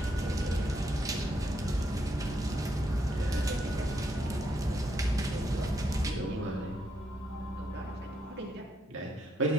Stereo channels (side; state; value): both; normal; correlation 0.78